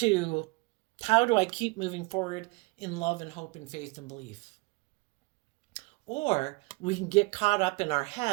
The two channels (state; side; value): quieter; left; 27.1 dB